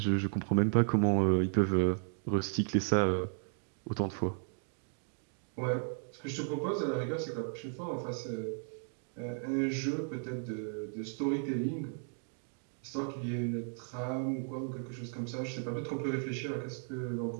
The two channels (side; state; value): left; silent; 54 dB below the other